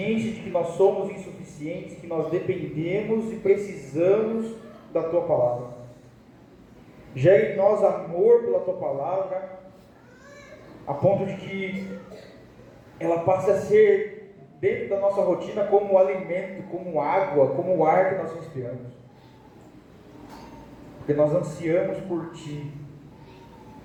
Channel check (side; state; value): both; identical; correlation 1.00